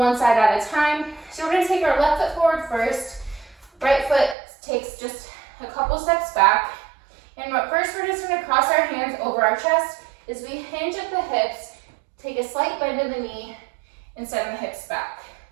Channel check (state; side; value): drops out; left; at 4.4 s